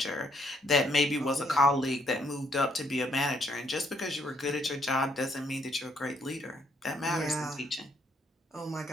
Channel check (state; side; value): normal; both; correlation 0.70